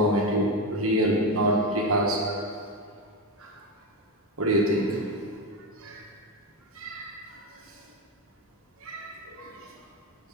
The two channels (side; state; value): both; normal; correlation 0.14